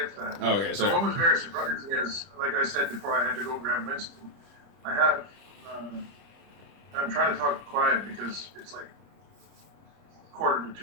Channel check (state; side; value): late; left; 30 ms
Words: to that. Oh, okay, So sorry. what was very surprising is, like I said before, I had to go grab Winston. I have. I'm trying to talk quiet because it's like 1:45